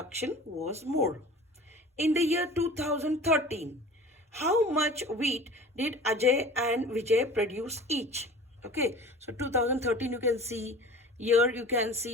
was more. In the year 2013, how much wheat did Ajay and Vijay produce each? Okay, so 2013 you can see, here you can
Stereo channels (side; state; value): both; normal; correlation 0.41